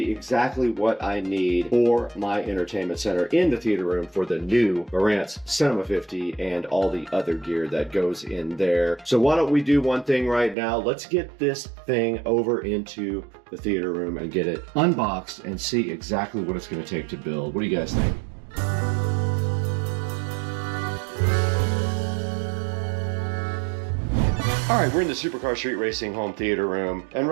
exactly what I need for my entertainment center in the theater room for the new Marantz Cinema 50 and all the other gear that goes in there. So why don't we do one thing right now? Let's get this thing over into the theater room and get it unboxed and see exactly what it's going to take to build. What do you guys think? All right, we're in the Supercar Street Racing home theater room, and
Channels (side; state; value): left; drops out; at 10.6 s